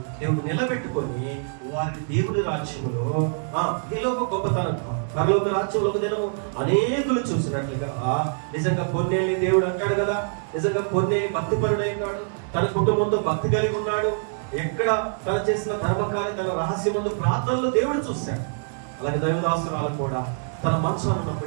దేవుడు నిలబెట్టుకొని వారి దేవుని రాజ్యములో ఈలోక గొప్పతనం పరలోక రాజ్యంలో నేను అనేకులు చూసినట్లుగా నిజంగా కొన్నేళ్ళ దేవుడు అంటాడు కదా, నిజంగా కొన్నేళ్ళు భక్తిపరుడైనాడు, తన కుటుంబంతో భక్తి కలిగి ఉన్నాడు, ఎక్కడ తను చేసిన ధర్మకార్యం తన రహస్యమందు ప్రార్థనలో దేవుడు చూశాడు. అలాగే దైవదాసురాలు కూడా తన మంచాన్ని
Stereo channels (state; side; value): silent; left; digital silence